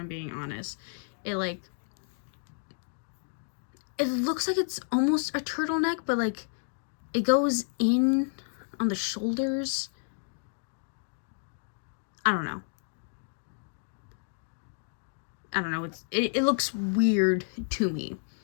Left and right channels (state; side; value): silent; right; digital silence